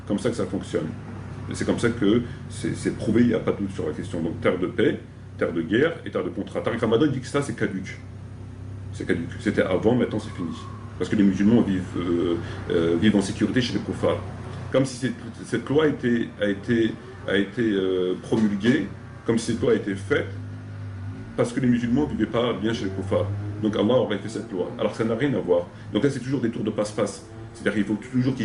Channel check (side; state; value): both; identical; correlation 1.00